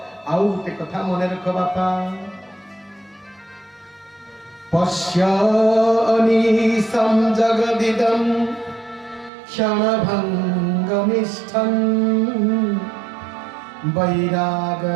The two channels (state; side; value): drops out; left; at 9.3 s